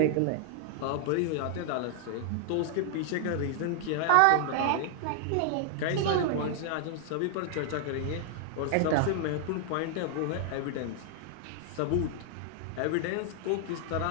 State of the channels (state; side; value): different; both; correlation 0.00